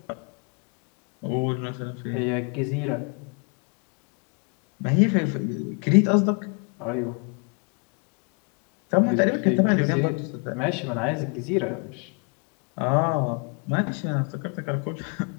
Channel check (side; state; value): right; quieter; 36.4 dB